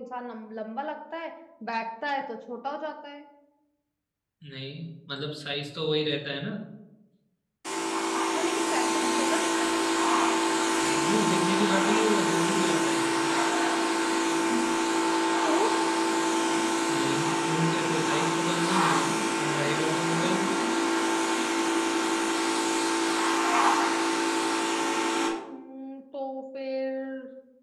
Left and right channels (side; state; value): both; identical; correlation 1.00